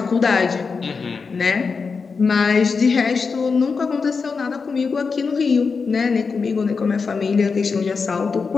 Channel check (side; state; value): right; quieter; 5.0 dB